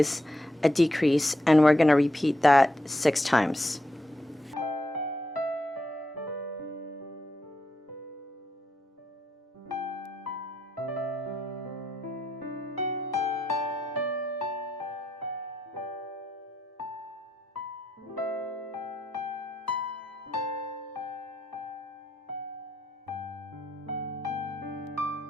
a decrease, and we're going to repeat that 6 times.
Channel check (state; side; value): normal; both; correlation 0.82